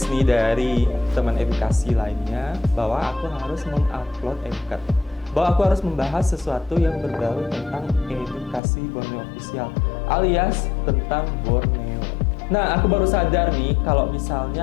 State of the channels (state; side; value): drops out; right; at 8.6 s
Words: nih dari teman edukasi lainnya bahwa aku harus mengupload MCAT, bahwa aku harus membahas sesuatu yang berbau tentang Edukasi Borneo Official alias tentang Borneo. Nah, aku baru sadar nih kalau